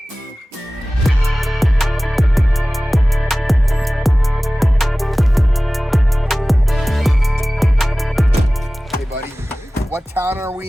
What town are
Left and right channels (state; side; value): normal; both; correlation 0.97